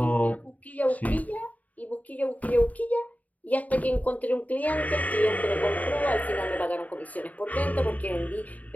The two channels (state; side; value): late; right; 0.073 ms